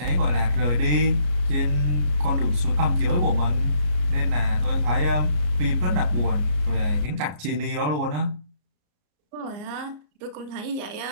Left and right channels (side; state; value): left; late; 33 ms